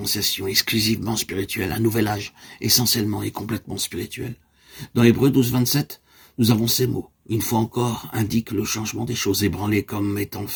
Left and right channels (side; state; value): both; identical; correlation 1.00